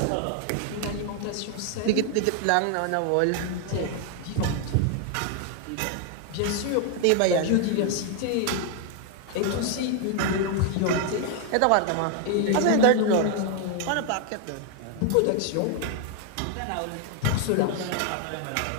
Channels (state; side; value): different; both; correlation 0.00